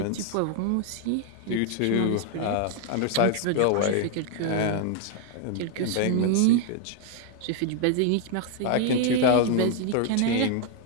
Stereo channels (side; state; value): both; different; correlation 0.00